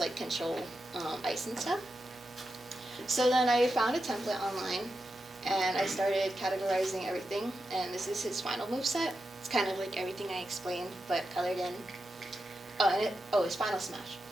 like, control ice and stuff. So then I found a template online, and I started categorizing everything, and this is his final moveset. It's kind of like everything I explained, but colored in. His final smash.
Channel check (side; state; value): both; normal; correlation 0.88